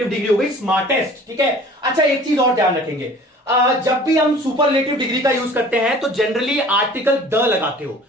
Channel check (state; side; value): normal; both; correlation 0.47